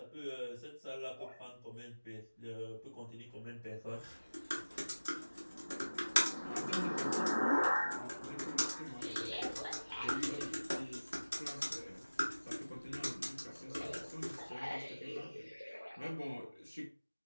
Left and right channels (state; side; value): inverted; both; correlation -1.00